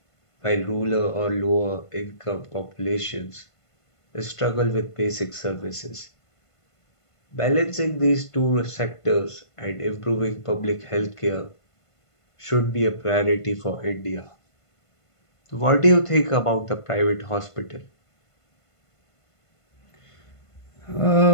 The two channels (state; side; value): late; right; 1.5 ms